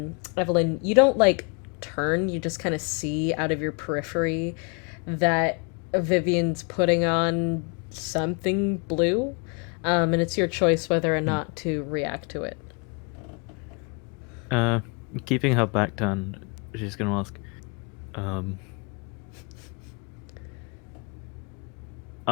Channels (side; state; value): right; quieter; 34.6 dB